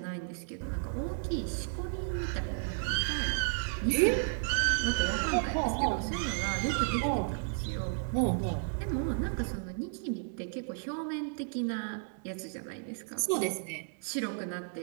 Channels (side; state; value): left; silent; digital silence